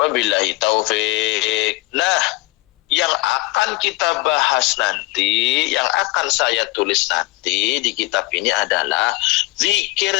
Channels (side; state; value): right; quieter; 21.2 dB